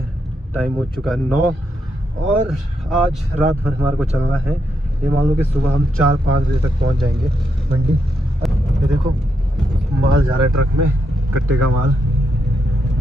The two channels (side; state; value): both; normal; correlation 0.81